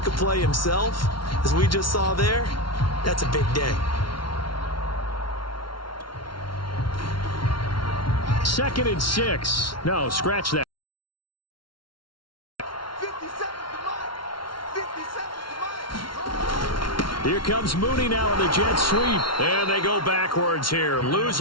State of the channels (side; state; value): right; late; 0.73 ms